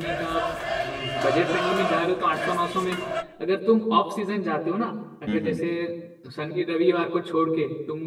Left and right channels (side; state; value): both; identical; correlation 1.00